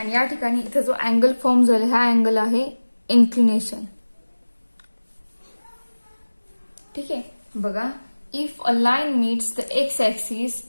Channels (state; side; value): inverted; both; correlation -1.00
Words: या ठिकाणी इथे जो अँगल फॉर्म झाला, हा अँगल आहे इन्क्लिनेशन. ठीक आहे. बघा, if a line meats the X axis